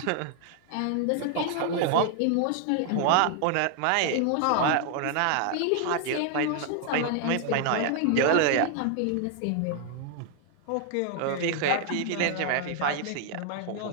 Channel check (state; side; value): different; both; correlation 0.00